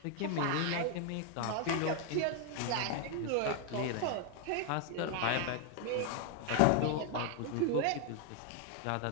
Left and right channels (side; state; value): both; different; correlation 0.00